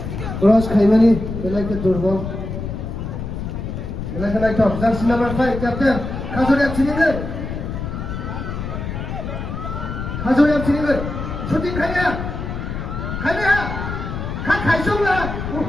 Cross Khaimani, belakang Durbal. Belakang itu, jersey number 5, Captain. Khazuriap sini ke? Khazuriap sini ke? Shooting Khaya. Khaya. Khat Khaisong lah.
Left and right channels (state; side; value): noise; left; rumble, 6 dB below the sound